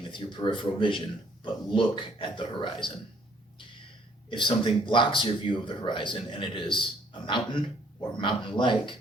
with your peripheral vision, but look at the horizon. If something blocks your view of the horizon and it is a mountain or mountain-like,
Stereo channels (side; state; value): both; normal; correlation 0.63